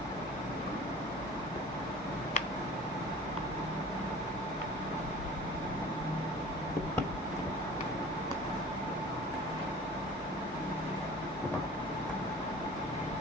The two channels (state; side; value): normal; both; correlation 0.43